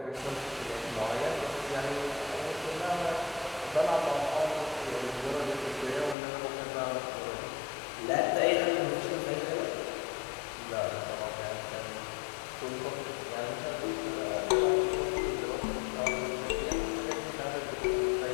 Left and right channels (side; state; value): right; drops out; at 6.2 s